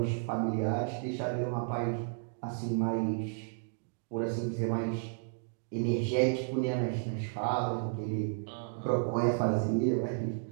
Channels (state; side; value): silent; left; digital silence